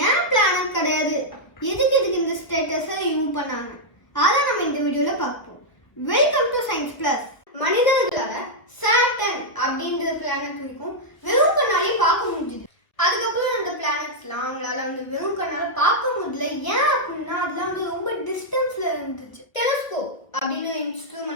ஏன் பிளானட் கிடையாது, எதுக்கு இந்த ஸ்டேட்டஸை யூஸ் பண்ணாங்க, அதான் நம்ம இந்த வீடியோல பார்ப்போம். Welcome to science plus. மனிதர்களால சாட்டர்ன் அப்படின்ற பிளானட் இருக்கும் வெறும் கண்ணாலே பார்க்க முடியுது. அதுக்கப்புறம் அந்த பிளானட்ஸ்லாம் அவங்களால வந்து வெறும் கண்ணால பார்க்க முடியல. ஏன் அப்படின்னா அதெல்லாம் வந்து ரொம்ப டிஸ்டன்ஸ்ல இருந்துச்சு. டெலஸ்கோப் அப்படின்னு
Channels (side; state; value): right; late; 1.3 ms